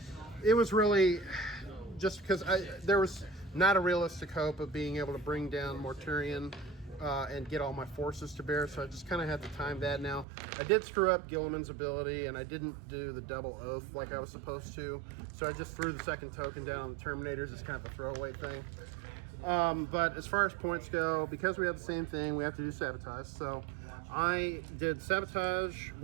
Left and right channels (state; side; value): drops out; left; at 10.2 s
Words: It was really just because there was not a realistic hope of being able to bring down Mortarion and get all my forces to bear, so I just kind of had to time that. Now, I did screw up Gilliman's ability, and I didn't do the double oath like I was supposed to, so I just threw the second token down on the Terminators as kind of a throwaway thing. But as far as points go, because we have the same thing, we have to do sabotage. So I did sabotage